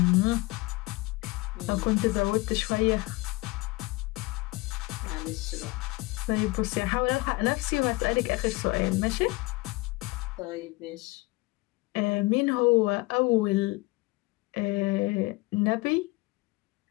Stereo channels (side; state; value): right; quieter; 22.8 dB